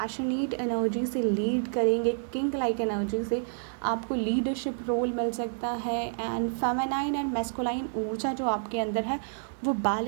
एनर्जी से लीड करेंगे, किंग लाइक एनर्जी से आपको लीडरशिप रोल मिल सकता है। एंड फेमिनाइन एंड मैस्कुलाइन ऊर्जा जो आपके अंदर है वो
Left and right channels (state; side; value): silent; left; digital silence